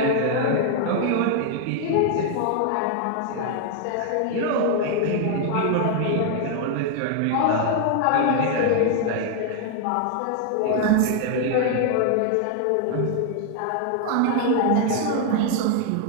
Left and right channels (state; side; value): different; both; correlation 0.00